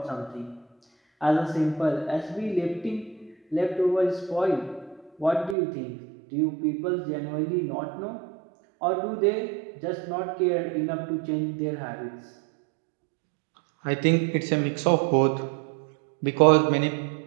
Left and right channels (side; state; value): left; drops out; at 5.6 s